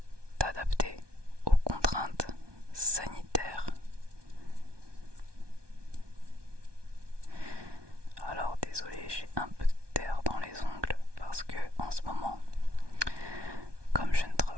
t'adapter aux contraintes sanitaires. Alors désolé, j'ai un peu de terre dans les ongles parce que en ce moment, comme je ne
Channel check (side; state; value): left; late; 1.2 ms